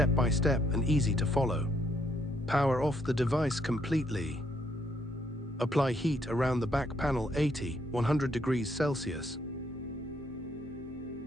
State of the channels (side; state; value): both; normal; correlation 0.72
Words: by step and easy to follow. Power off the device completely. Apply heat around the back panel 100 degrees Celsius.